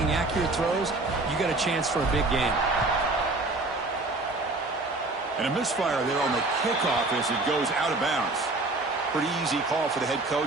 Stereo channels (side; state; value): left; quieter; 3.1 dB